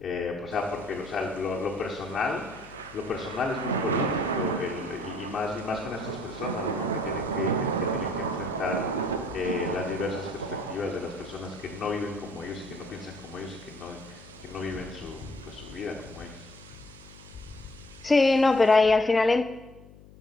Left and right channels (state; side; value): noise; left; hum, 21 dB below the sound